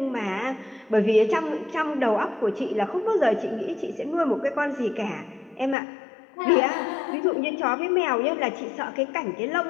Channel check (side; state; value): right; drops out; at 5.8 s